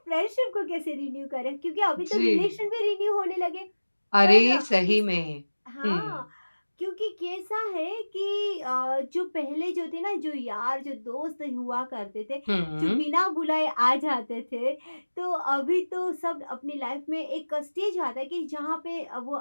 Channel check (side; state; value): both; inverted; correlation -1.00